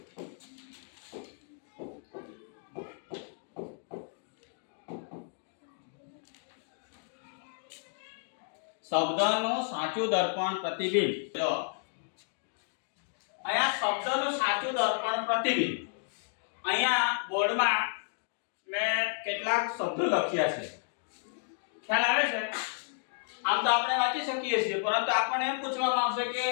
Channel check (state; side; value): silent; right; digital silence